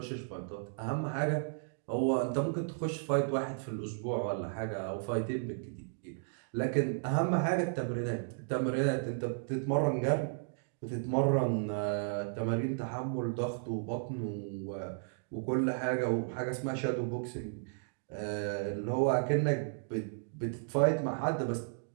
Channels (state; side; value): silent; left; digital silence